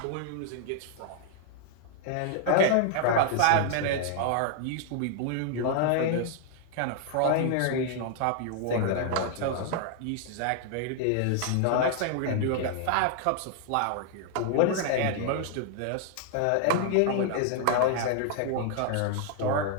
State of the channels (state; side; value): different; both; correlation 0.00